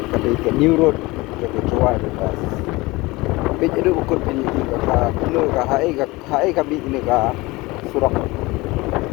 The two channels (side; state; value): right; quieter; 22.0 dB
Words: Kami ke New Road ke Juwai bypass. Kami ada ukut ini ke hai kami ini ke Surak.